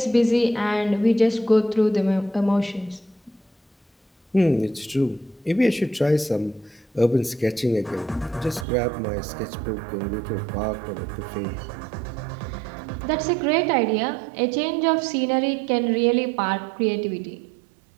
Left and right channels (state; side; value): drops out; left; at 8.7 s